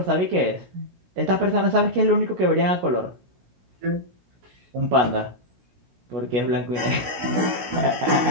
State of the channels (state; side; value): late; left; 16 ms